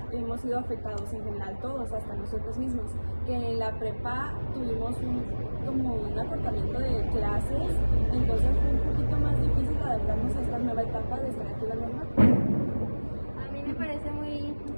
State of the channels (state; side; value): inverted; both; correlation -1.00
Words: hemos sido afectados en general todos, hasta nosotros mismos, que en la prepa tuvimos como un acortamiento de clases, entonces fue un poquito más difícil adaptarnos a esta nueva etapa de estar aquí en la norma. A mí me parece muy